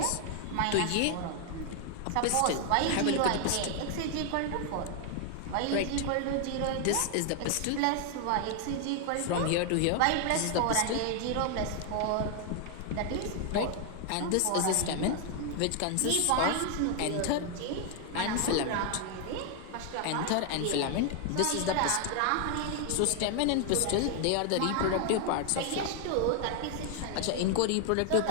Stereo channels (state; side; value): different; both; correlation 0.00